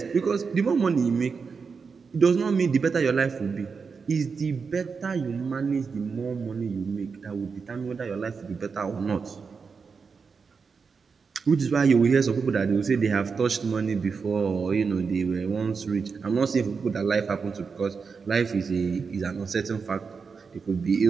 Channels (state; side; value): quieter; left; 5.3 dB